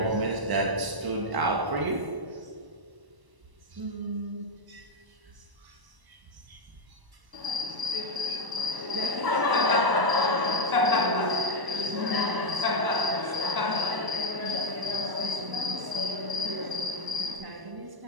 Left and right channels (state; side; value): late; left; 1.0 ms